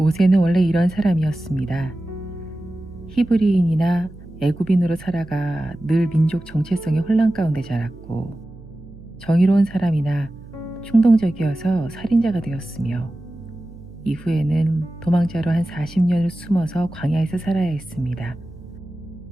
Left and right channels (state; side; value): noise; right; hum, 19 dB below the sound